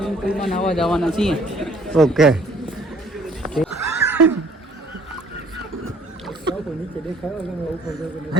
પુલમાં નાવા જવાના છીએ. ઓકે.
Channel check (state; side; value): normal; both; correlation 0.59